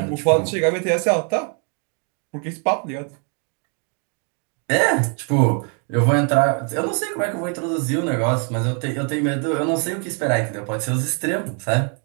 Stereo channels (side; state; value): left; quieter; 39.8 dB